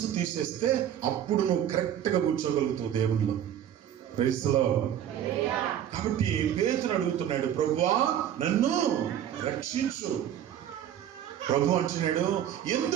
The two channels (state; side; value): quieter; left; 10.4 dB